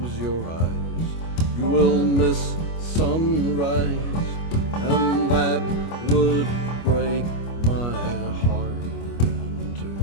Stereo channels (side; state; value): right; late; 25 ms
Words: sunrise, and that would break my heart in